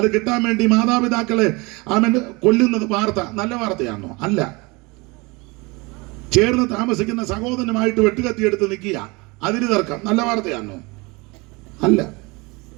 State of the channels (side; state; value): left; quieter; 25.8 dB